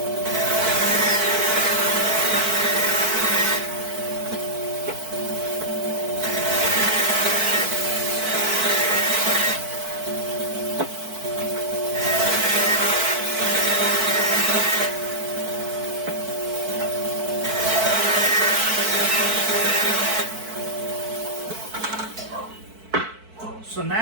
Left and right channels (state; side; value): late; left; 4.5 ms